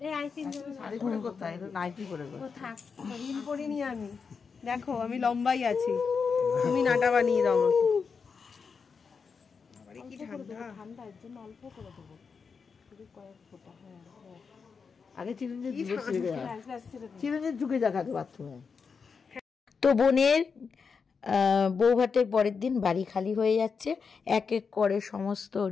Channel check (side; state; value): right; quieter; 5.5 dB